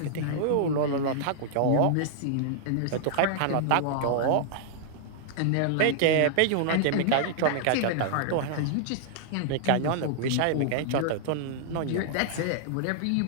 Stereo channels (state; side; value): different; both; correlation -0.01